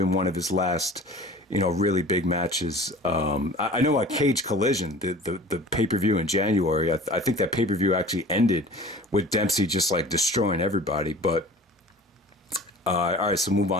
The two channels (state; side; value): normal; both; correlation 0.42